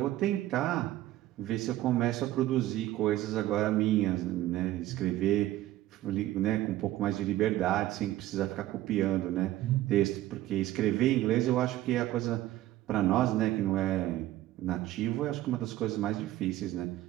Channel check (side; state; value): left; quieter; 14.8 dB